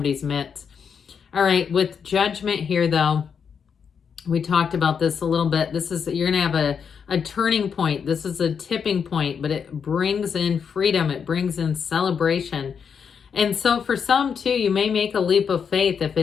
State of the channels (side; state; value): right; quieter; 6.7 dB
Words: midst. All right, with Judgment here, though, we talked about this a little bit. You're going to have a turning point. This is a tipping point, but it brings in freedom. It brings in celebration. And so for some, too, you may make a leap of faith if